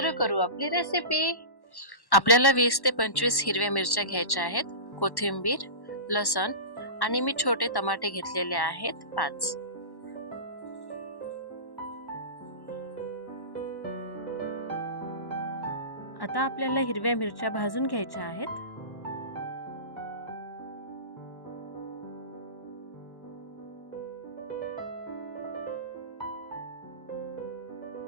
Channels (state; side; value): late; right; 1.1 ms